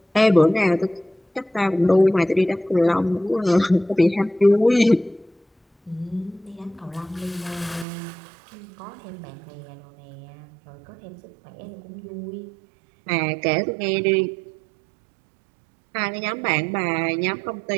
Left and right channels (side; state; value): left; drops out; at 7.9 s